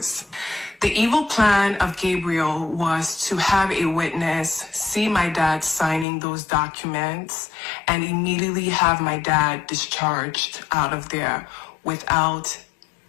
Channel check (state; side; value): drops out; right; at 6.1 s